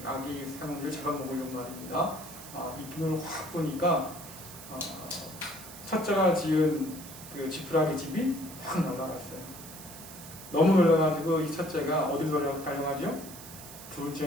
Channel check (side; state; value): right; noise; hiss, 14 dB below the sound